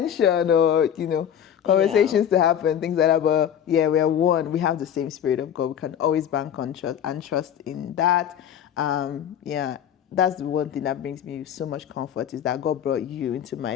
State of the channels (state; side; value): quieter; right; 9.3 dB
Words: or, conversations to happen, things like that. But we are one. We have the same Spirit of God. We can always bank on trust in that. That's the one thing that brings me so much comfort, is that God brought you into my